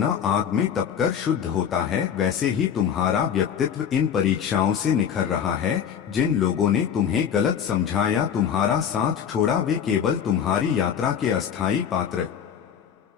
आग में तपकर शुद्ध होता है, वैसे ही तुम्हारा व्यक्तित्व इन परीक्षाओं से निखर रहा है। जिन लोगों ने तुम्हें गलत समझा या तुम्हारा साथ छोड़ा वे केवल तुम्हारी यात्रा के अस्थायी पात्र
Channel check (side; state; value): right; quieter; 8.2 dB